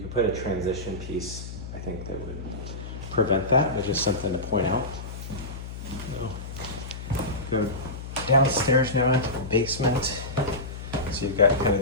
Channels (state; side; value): noise; left; hum, 9 dB below the sound